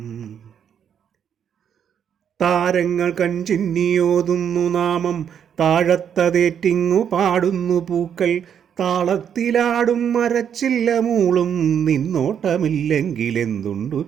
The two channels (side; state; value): left; quieter; 8.4 dB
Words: താരങ്ങൾ കൺചിന്നിയോതുന്നു നാമം, താഴത്തതേറ്റിങ്ങു പാടുന്നു പൂക്കൾ. താളത്തിലാടും മരച്ചില്ല മൂളും, നിന്നോട്ടമില്ലെങ്കിലെന്തുണ്ടു